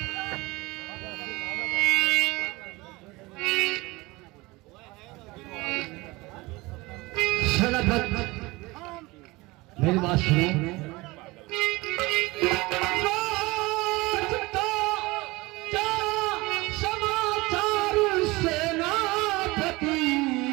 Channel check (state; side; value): quieter; left; 22.2 dB